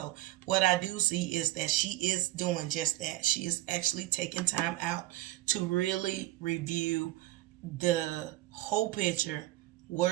what I do see is that she is doing just that. She is actually taking time out to really review the whole picture,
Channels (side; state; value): left; quieter; 16.6 dB